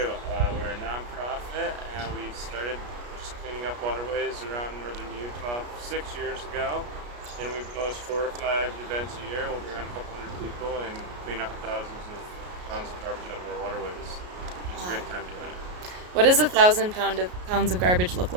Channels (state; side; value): late; left; 33 ms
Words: We're a nonprofit, and we started just cleaning up waterways around northern Utah 6 years ago. And we post 4 or 5 events a year. We'll bring on a couple hundred people and clean up thousands of pounds of garbage out of our waterways. It's a great time doing it. What does 1,000 pounds of garbage look